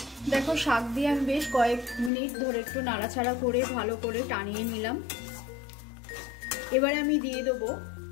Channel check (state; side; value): drops out; right; at 2.1 s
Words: দেখো শাক দিয়ে আমি বেশ কয়েক মিনিট ধরে একটু নাড়াচাড়া করে ভালো করে টানিয়ে নিলাম। এবারে আমি দিয়ে দেবো